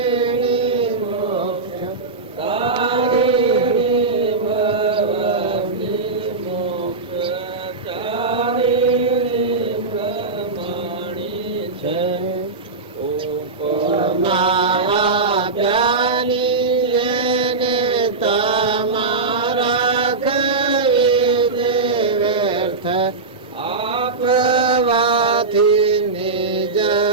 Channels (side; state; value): left; quieter; 4.1 dB